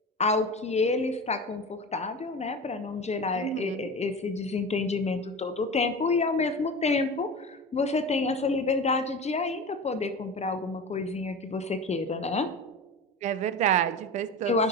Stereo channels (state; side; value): normal; both; correlation 0.30